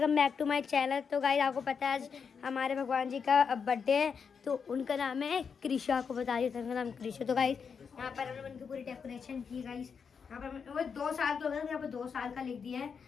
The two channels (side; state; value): right; quieter; 6.2 dB